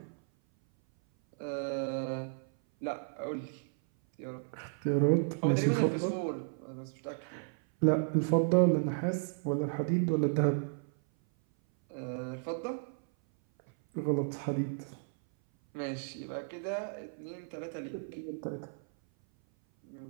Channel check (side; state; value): left; silent; 55 dB below the other